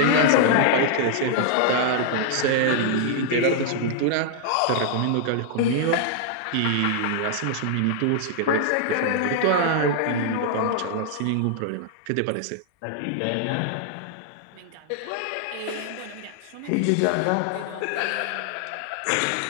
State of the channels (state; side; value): different; both; correlation -0.01